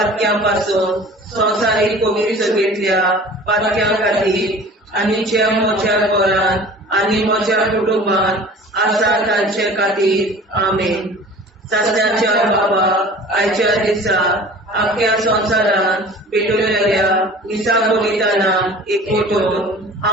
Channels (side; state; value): both; normal; correlation 0.43